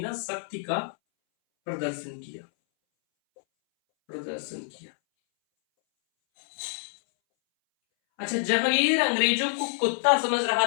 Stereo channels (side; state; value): right; silent; 60 dB below the other